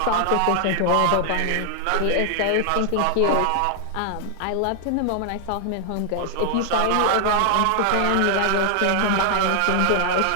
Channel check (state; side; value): different; both; correlation 0.00